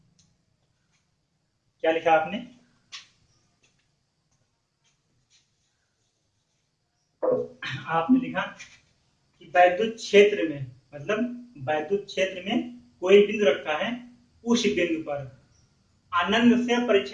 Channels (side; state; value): both; identical; correlation 1.00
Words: क्या लिखा आपने? आपने लिखा कि वैद्युत क्षेत्र में, मतलब वैद्युत क्षेत्र में कोई बिंदु रखा है, उस बिंदु पर आनंद से